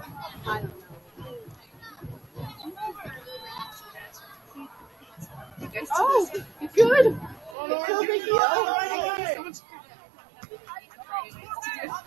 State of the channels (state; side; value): drops out; left; at 7.6 s